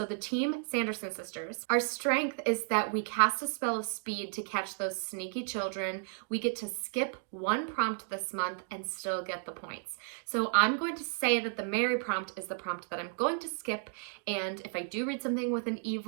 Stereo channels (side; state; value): left; silent; 56 dB below the other